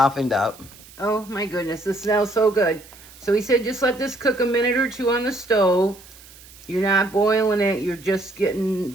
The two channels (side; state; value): right; noise; hiss, 22 dB below the sound